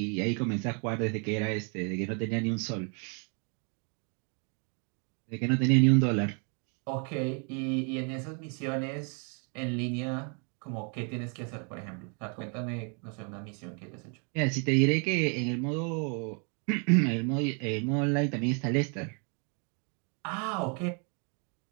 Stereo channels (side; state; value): left; quieter; 37.9 dB